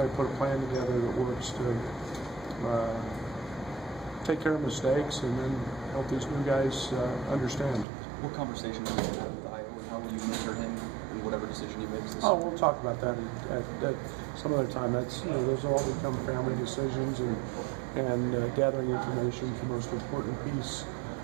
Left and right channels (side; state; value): left; drops out; at 7.9 s